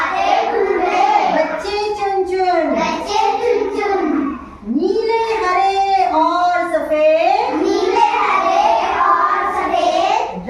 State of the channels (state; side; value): identical; both; correlation 1.00